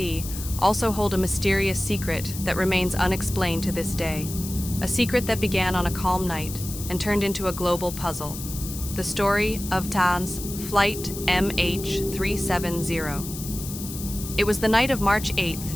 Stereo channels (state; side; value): noise; left; hiss, 10 dB below the sound